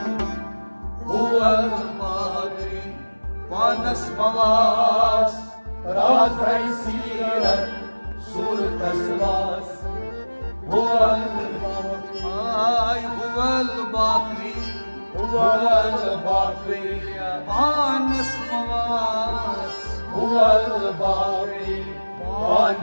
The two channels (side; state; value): both; inverted; correlation -1.00